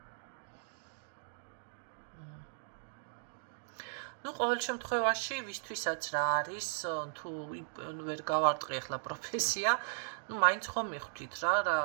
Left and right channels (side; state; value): left; silent; digital silence